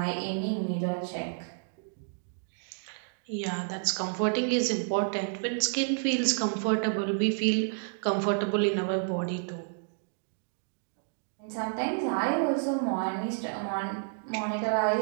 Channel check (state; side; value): silent; left; digital silence